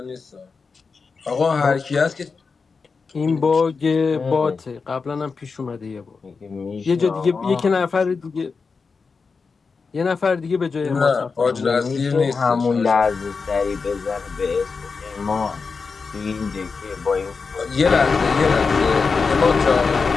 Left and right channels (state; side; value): quieter; right; 4.9 dB